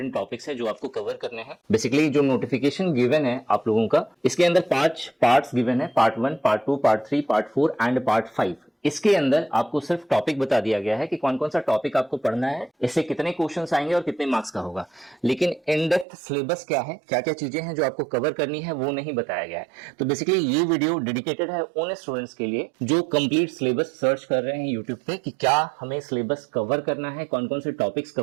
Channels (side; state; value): left; drops out; at 16.1 s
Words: टॉपिक्स है जो आपको कवर करने हैं। बेसिकली जो नोटिफिकेशन गिवन है आप लोगों का, इसके अंदर 5 पार्ट्स गिवन है, part 1, part 2, part 3, part 4 and part 5। इसके अंदर आपको सिर्फ टॉपिक बता दिया गया है कि कौन कौन सा टॉपिक आपको पढ़ना है, इससे कितने क्वेश्चंस आएंगे और कितने मार्क्स का होगा। लेकिन इन डेप्थ सिलेबस क्या है, क्या क्या चीजें हैं जो आपको कवर करनी है, वो नहीं बताया गया है। तो बेसिकली ये वीडियो डेडिकेटेड है उन स्टूडेंट्स के लिए जो कंप्लीट सिलेबस सर्च कर रहे हैं यूट्यूब पे कि क्या हमें सिलेबस कवर करना है, कौन कौन से टॉपिक्स